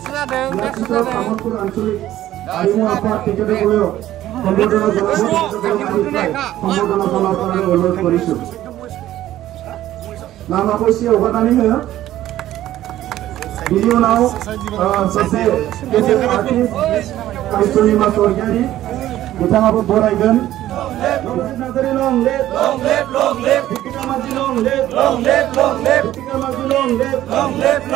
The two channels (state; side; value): quieter; left; 13.6 dB